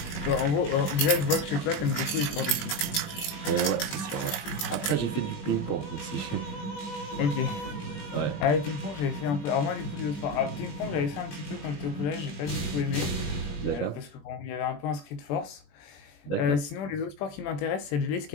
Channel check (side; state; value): right; late; 21 ms